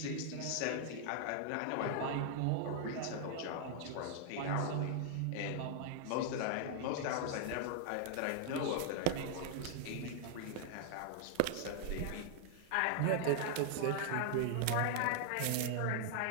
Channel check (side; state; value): both; different; correlation 0.00